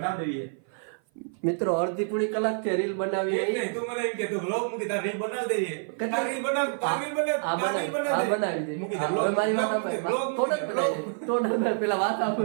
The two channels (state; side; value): silent; left; 55 dB below the other